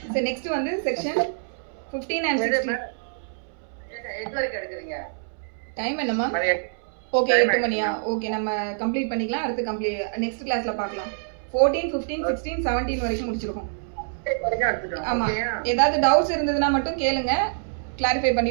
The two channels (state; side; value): silent; left; 61 dB below the other